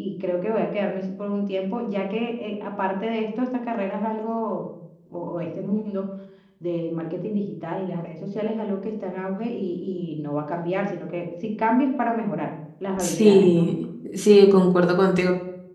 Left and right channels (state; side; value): identical; both; correlation 1.00